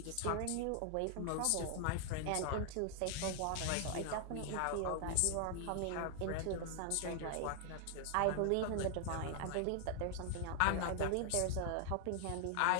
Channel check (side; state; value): both; different; correlation 0.00